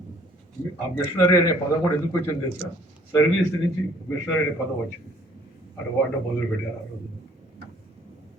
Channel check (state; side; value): normal; both; correlation 0.59